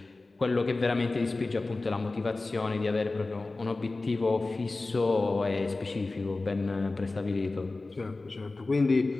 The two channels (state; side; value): quieter; right; 3.3 dB